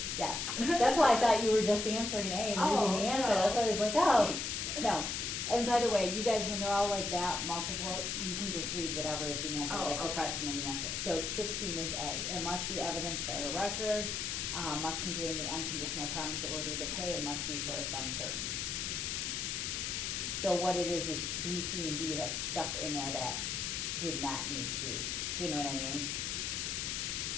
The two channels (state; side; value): noise; left; hiss, 2 dB below the sound